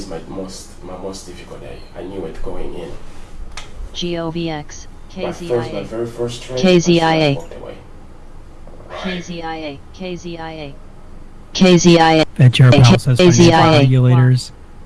my most difficult day. I knew it going in. GOVX. My KZIA. very first trade. KZIA. I walked away. Right. KZIA. KZIA. KZIA. Fed Chair Powell says financial KZIA. regulators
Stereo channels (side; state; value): both; identical; correlation 1.00